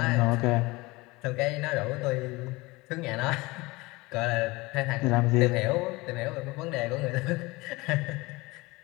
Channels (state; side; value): quieter; right; 22.6 dB